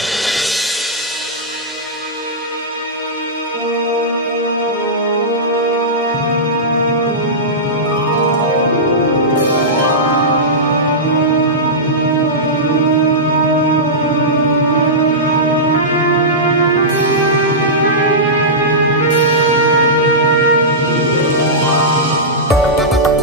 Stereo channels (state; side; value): normal; both; correlation -0.14